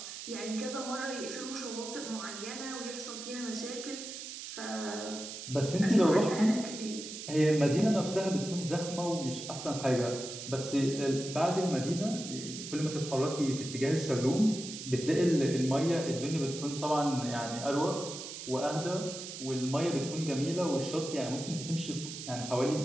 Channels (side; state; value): right; noise; hiss, 9 dB below the sound